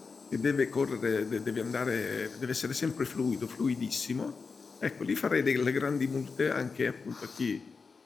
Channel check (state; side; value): quieter; right; 4.8 dB